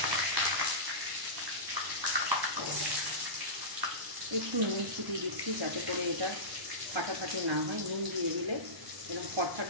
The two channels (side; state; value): left; late; 1.0 ms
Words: একটু নুন ছিটিয়ে দিচ্ছি যাতে করে এটা ফাটাফাটি না হয়। নুন দিয়ে দিলে এরকম ফটফট